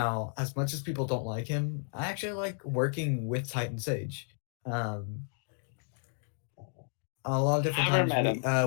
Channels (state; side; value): silent; right; 56 dB below the other